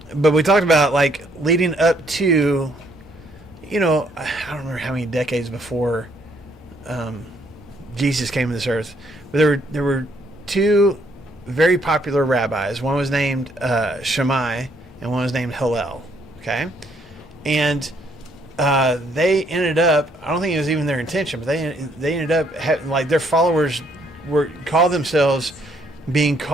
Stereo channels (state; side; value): normal; both; correlation 0.69